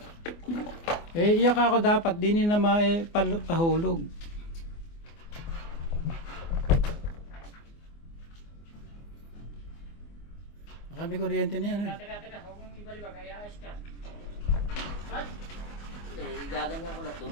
Iyak ako dapat, di na pahulog. Sabi kuryente na yan. Teka. Huwag mong ibalibag. Ay ayos ka. What? Eh, gaganyan ko lang,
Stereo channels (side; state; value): right; late; 24 ms